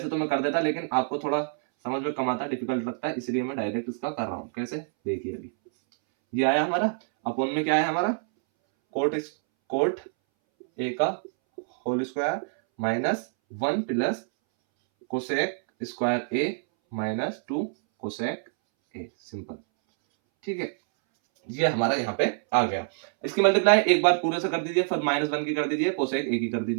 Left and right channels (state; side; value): silent; left; 61 dB below the other